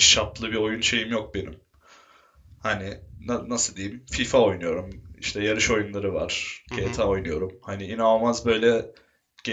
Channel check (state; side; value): identical; both; correlation 1.00